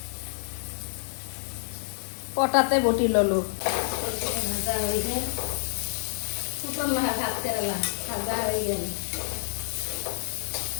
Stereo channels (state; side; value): silent; right; digital silence